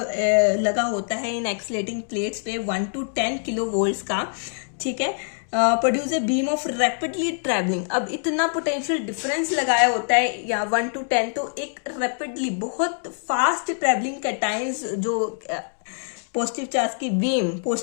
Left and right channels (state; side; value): silent; right; digital silence